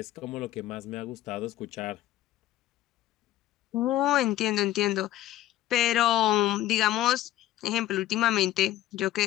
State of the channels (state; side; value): quieter; right; 13.9 dB